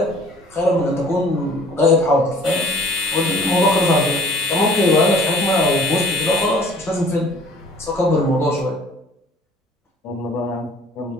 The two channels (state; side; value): normal; both; correlation 0.52